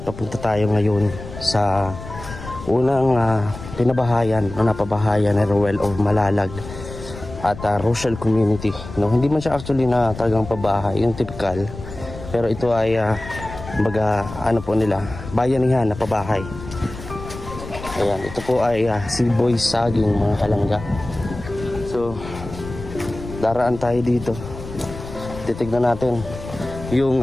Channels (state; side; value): noise; left; rumble, 12 dB below the sound